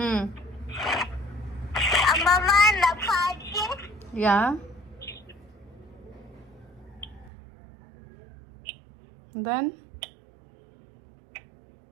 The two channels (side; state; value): left; drops out; at 7.3 s